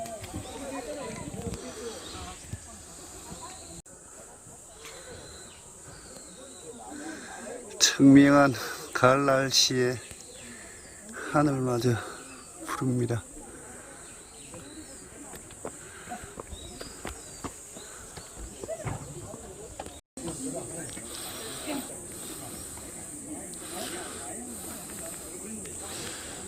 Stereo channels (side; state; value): both; identical; correlation 1.00